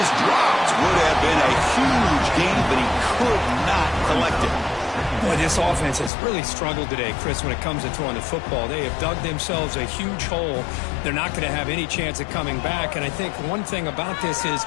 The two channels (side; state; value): right; drops out; at 6.1 s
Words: dropped. Would have been a huge gain, but he could not collect it. Boy, this offense has really struggled today, Chris, when it comes to throwing the football. They have dug themselves a huge hole. They're not going to have any chance of coming back. And I think one thing about this is